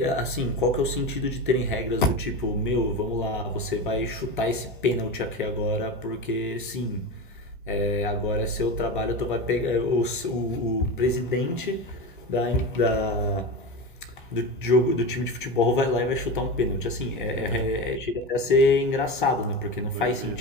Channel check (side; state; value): both; normal; correlation 0.23